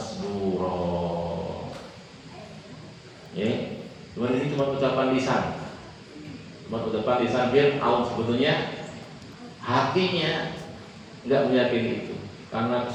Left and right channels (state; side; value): identical; both; correlation 1.00